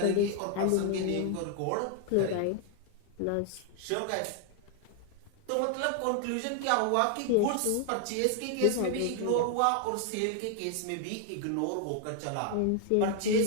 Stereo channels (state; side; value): different; both; correlation 0.00